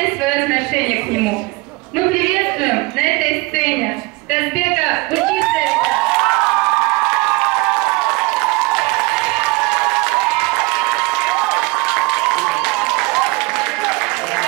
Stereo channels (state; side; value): quieter; left; 25.2 dB